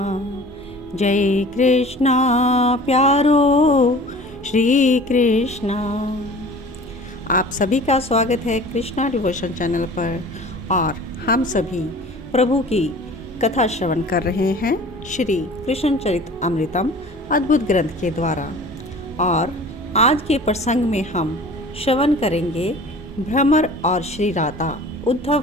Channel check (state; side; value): normal; both; correlation 0.44